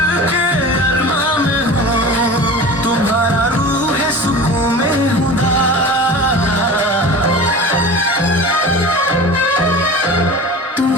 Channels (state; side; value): normal; both; correlation 0.35